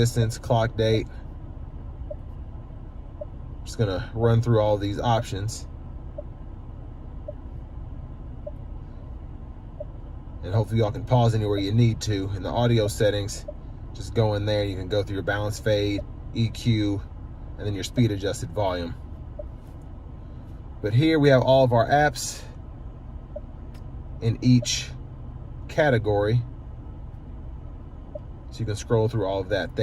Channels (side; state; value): both; identical; correlation 1.00